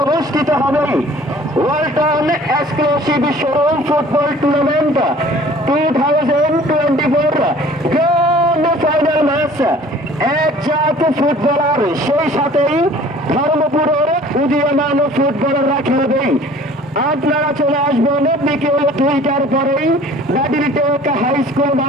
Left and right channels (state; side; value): normal; both; correlation 0.50